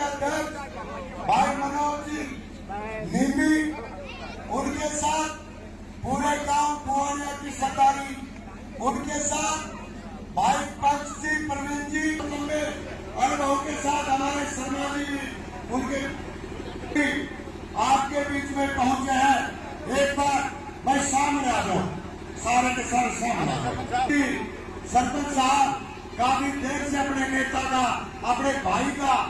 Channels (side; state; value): both; identical; correlation 1.00